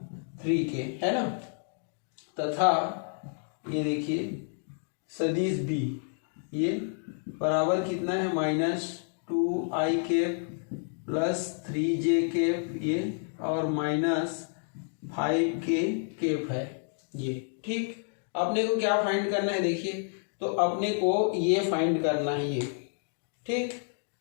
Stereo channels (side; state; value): right; silent; 58 dB below the other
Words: 3k है ना, तथा ये देखिए सदिश b ये बराबर कितना है -2i cap plus 3j cap ये और माइनस 5k कैप है ये। ठीक, अपने को क्या फाइंड करना है देखिए, तो अपने को ये फाइंड करना है ये। ठीक,